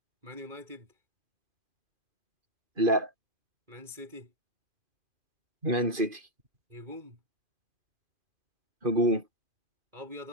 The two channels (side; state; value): left; late; 2.5 ms